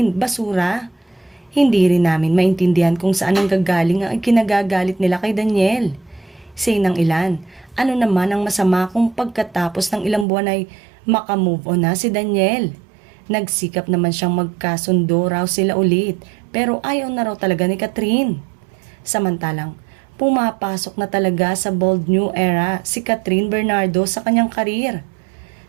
Basura. Hindi rin namin maintindihan kung saan ang gagaling ang kinagagalit nila kay Daniel. Say ng ilan, ano naman ang masama kung pagkatapos ng ilang buwan ay makamove on na si Daniel? Nagsikap naman siyang magkasundo raw sila ulit, pero ayaw na raw talaga ni Catherine. Samantalang, pumapasok na talaga sa bold new era si Catherine Bernardo sa kanyang karir.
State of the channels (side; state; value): left; drops out; at 10.2 s